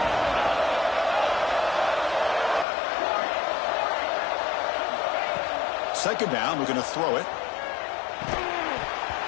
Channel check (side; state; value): right; drops out; at 2.7 s